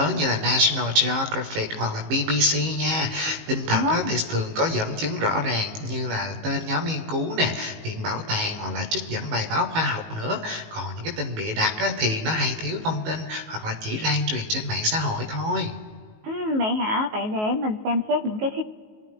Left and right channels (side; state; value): left; late; 19 ms